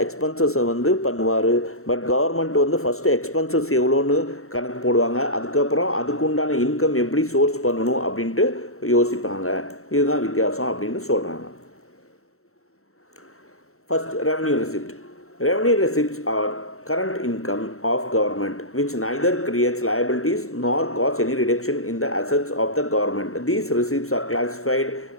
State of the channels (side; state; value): right; late; 0.63 ms